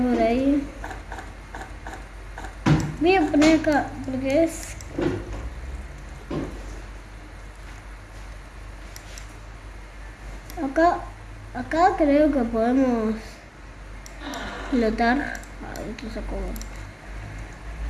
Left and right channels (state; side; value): identical; both; correlation 1.00